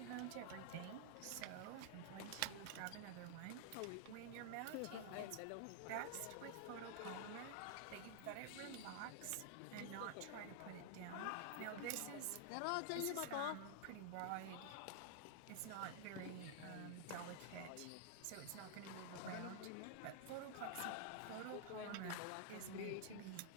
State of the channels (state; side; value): different; both; correlation -0.01